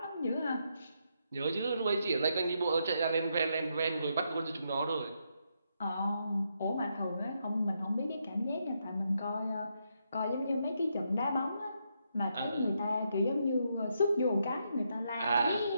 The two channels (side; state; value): both; inverted; correlation -0.79